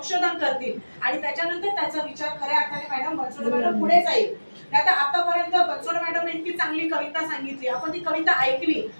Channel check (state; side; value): inverted; both; correlation -1.00